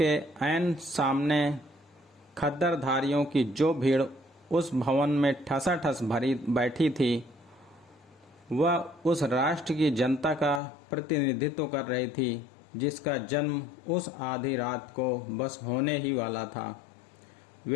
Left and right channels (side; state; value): right; drops out; at 10.6 s